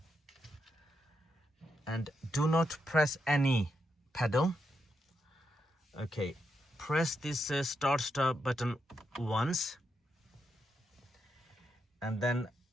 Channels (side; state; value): both; normal; correlation 0.82